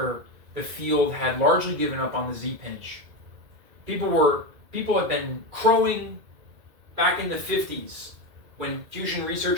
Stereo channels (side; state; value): left; late; 2.2 ms